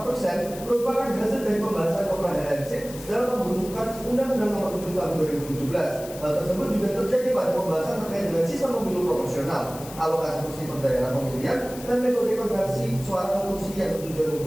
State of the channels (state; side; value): noise; left; hiss, 15 dB below the sound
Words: 4% merupakan hasil dari pembahasan komprehensif dalam pembentukan Undang-Undang Nomor 7 Tahun 2017. Hal tersebut juga terjadi pada pembahasan terkait dengan sistem pemilu proporsional, alokasi kursi per daerah pemilihan, dan metode konversi suara ke kursi yang bertujuan